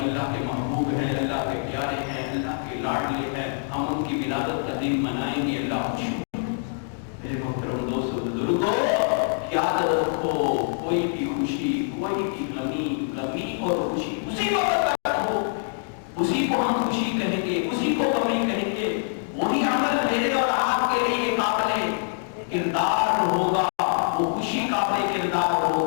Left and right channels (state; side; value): silent; right; digital silence